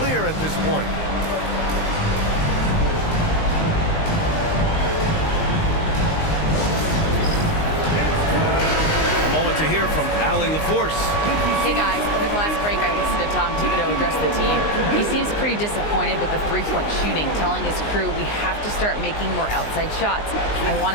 at this point. A moment to hear from Allie LaForce. Hey guys, over the last break I listened to Tom Thibodeau address the team. He seems pretty disappointed with the three-point shooting, telling his crew we have to start making more outside shots. I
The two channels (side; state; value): right; late; 19 ms